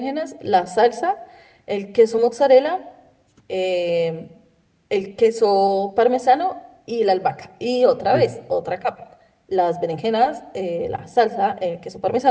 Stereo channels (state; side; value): identical; both; correlation 1.00